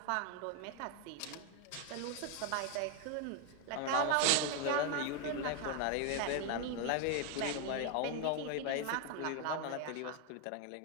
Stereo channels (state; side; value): different; both; correlation 0.01